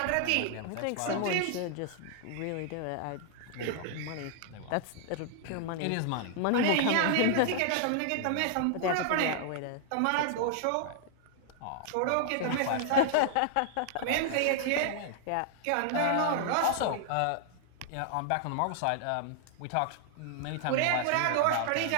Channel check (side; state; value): both; different; correlation -0.01